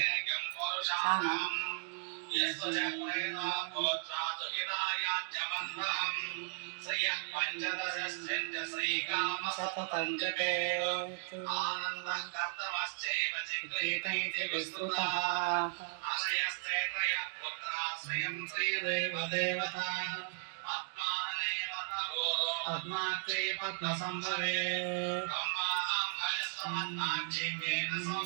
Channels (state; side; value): silent; left; 54 dB below the other